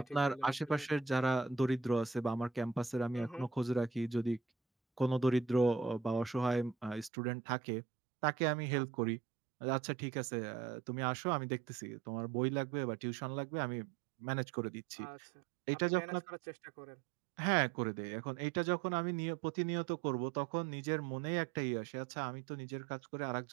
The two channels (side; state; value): left; drops out; at 7.1 s